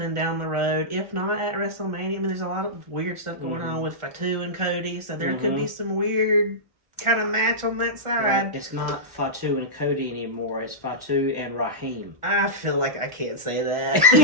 down the road. If not at WrestleMania, I mean, there's a lot of weird stuff going on with Fatu and Cody, so there could be some weird kind of match on that side. Right. It's not Fatu and Cody anymore. It's Fatu and Raheem. I feel like I can't say that.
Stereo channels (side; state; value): left; late; 1.4 ms